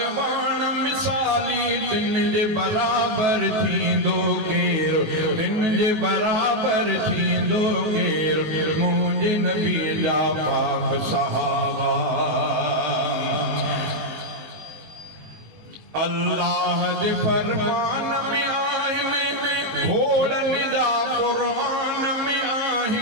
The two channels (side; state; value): left; late; 19 ms